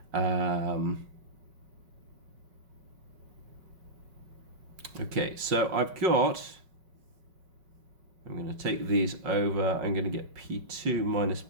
Okay, so I've got, I'm going to take these over, I'm going to get P2 minus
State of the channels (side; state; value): left; late; 5.3 ms